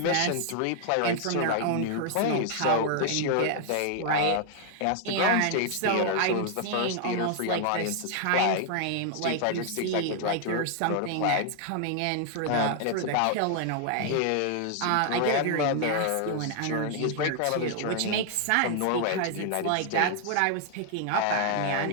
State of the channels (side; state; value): both; different; correlation 0.00